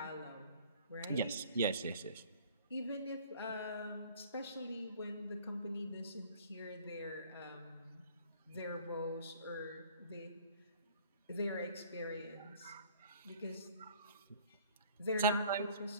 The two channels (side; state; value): both; inverted; correlation -0.52